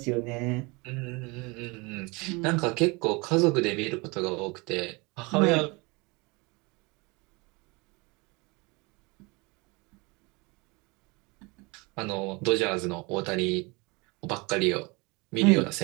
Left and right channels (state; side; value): quieter; left; 27.0 dB